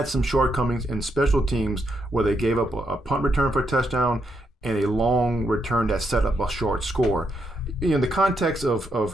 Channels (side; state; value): both; normal; correlation 0.79